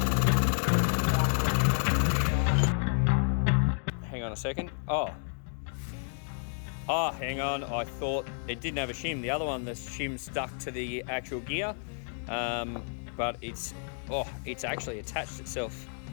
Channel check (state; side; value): silent; right; 57 dB below the other